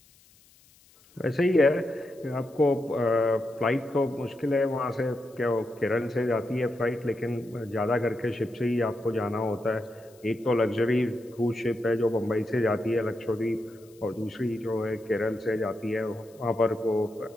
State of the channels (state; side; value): noise; left; hiss, 29 dB below the sound